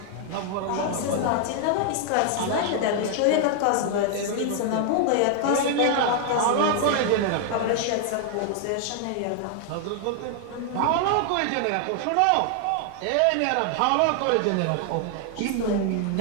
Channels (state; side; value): different; both; correlation 0.00